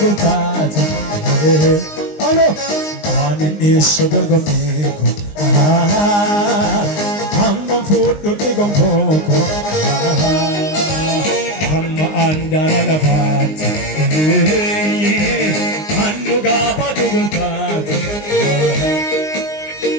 gooftaati alo anin dhiyeessu dorgommeeko hammam fuudhutti gonfooko hamma andara lafaatti annugaa baatu gooftaati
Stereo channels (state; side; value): late; right; 19 ms